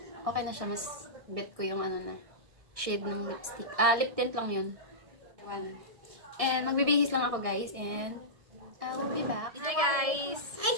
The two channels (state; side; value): late; left; 1.6 ms